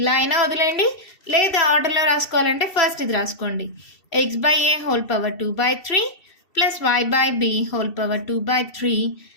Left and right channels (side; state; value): right; late; 2.7 ms